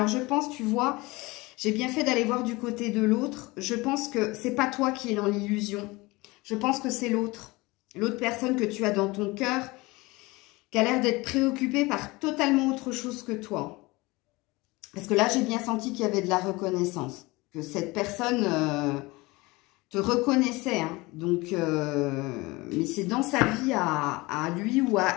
je pense, tu vois, j'ai bien fait d'aller voir du côté de l'autre. Je pense que c'est pas toi qui es dans l'illusion. Je pense que c'est l'autre. L'autre personne que tu as dans ton cœur... qui a l'air d'être préoccupée par totalement autre chose que toi. Parce que là, j'ai bien senti qu'il y avait de la reconnaissance. Que cette personne te reconnaissait. Hein. Donc, mais c'est dans sa vie à lui ou à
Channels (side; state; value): right; quieter; 22.7 dB